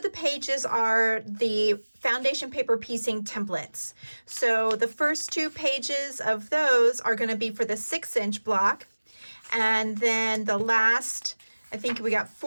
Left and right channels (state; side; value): inverted; both; correlation -1.00